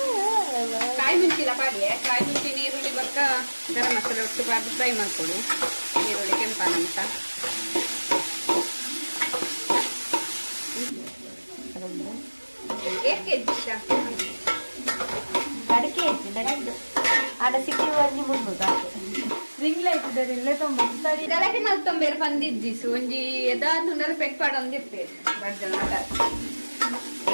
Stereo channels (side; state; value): both; inverted; correlation -1.00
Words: ಕಾಯಿ ಮುಂಚಿಲ್ಲ ಪಾಡಿಗೆ ಕಾಯಿ ಮುಂಚಿ ನೀರುಳ್ಳಿ ಬರ್ಕ ಗರಂ ಮಸಾಲೆ ಒಟ್ಟು ಬಾರ್ದು ಫ್ರೈ ಮಾಡ್ಕೊಡು ಈರುಳ್ಳಿ ಕೆಂಪಾನಂತ ಅಡಿಕೆ ಐತಿ ನಡೀತು ಆಡ ಸಿಕ್ಕಿ ಒಂಜಿ ಮುನ್ನೂರು ರಿಂಗ್ ಲೈಟ್ ಇಲ್ಲೇ ತೊಂಬತ್ತು ಗಲಾಟೆ ಮಲ್ತೊಂಬೇರು ಬಂದಿದ್ದಿಸು ಒಂಜಿ ಎದಾದ್ನುಂಡಲ ಪೆಟ್ ಪಾಡೊಂದಿರ್ತೆ ಬರ್ಜನ